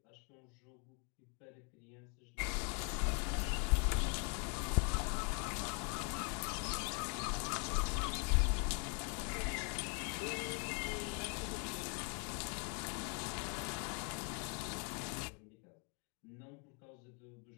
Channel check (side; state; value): right; quieter; 37.9 dB